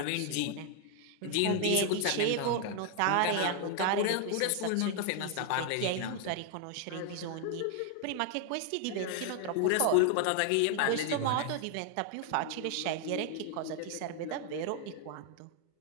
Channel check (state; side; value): different; both; correlation 0.00